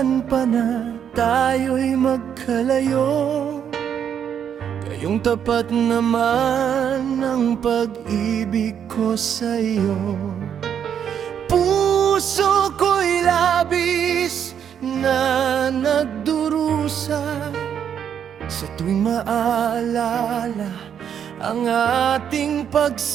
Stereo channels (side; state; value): left; quieter; 8.5 dB